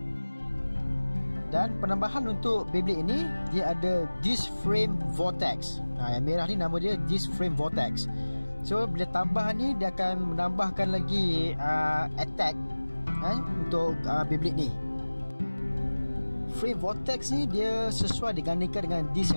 Dan penambahan untuk Beyblade ini, dia ada disc frame vortex. Yang merah ni nama dia disc frame vortex. So bila tambahan ni, dia akan menambahkan lagi attack untuk Beyblade ni. Frame vortex ni dia sesuai digandingkan dengan disc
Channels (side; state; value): both; inverted; correlation -1.00